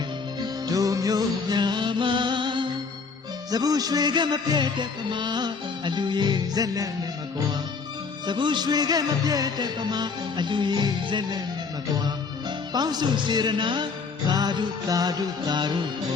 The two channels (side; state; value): right; quieter; 4.9 dB